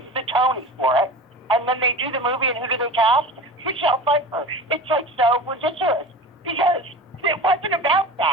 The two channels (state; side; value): normal; both; correlation 0.33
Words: the Tony for it. And then they do the movie, and who do they cast? Michelle Pfeiffer. It's like so ridiculous because it wasn't about